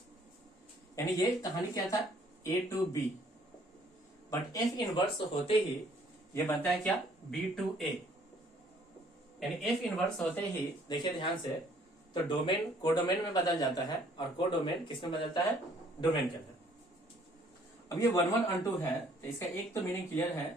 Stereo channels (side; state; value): both; normal; correlation 0.61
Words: यानी ये कहानी क्या था? A to B, but F inverse होते ही ये बनता है क्या? B to A. यानी एफ इनवर्स होते ही देखिए ध्यान से, तो डोमेन कोडोमेन में बदल जाता है और कोडोमेन किस में बदलता है? डोमेन के अंदर। अब ये 1 1 ऑन टू है तो इसका एक तो मीनिंग क्लियर है